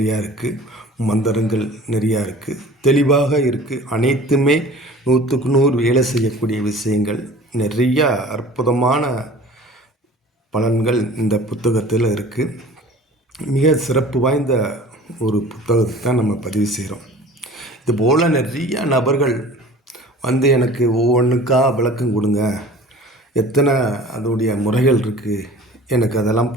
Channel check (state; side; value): normal; both; correlation 0.44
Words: இருக்குது, மந்திரங்கள் நிறையா இருக்குது, தெளிவாக இருக்குது. அனைத்துமே 100க்கு 100 வேலை செய்யக்கூடிய விஷயங்கள், நிறையா அற்புதமான பலன்கள் இந்த புத்தகத்தில் இருக்குது. மிக சிறப்பு வாய்ந்த ஒரு புத்தகத்தை தான் நம்ம பதிவு செய்கிறோம். இதுபோல் நிறைய நபர்கள் வந்து எனக்கு ஒவ்வொன்றுக்கா விளக்கம் கொடுங்க, எத்தனை அதோடைய முறைகள் இருக்குது, எனக்கு அதெல்லாம்